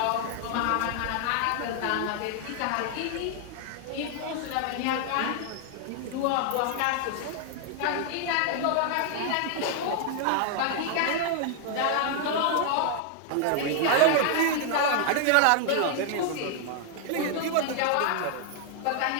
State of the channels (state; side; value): different; both; correlation 0.00